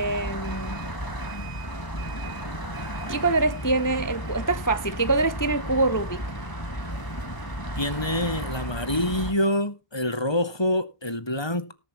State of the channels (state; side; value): late; right; 1.2 ms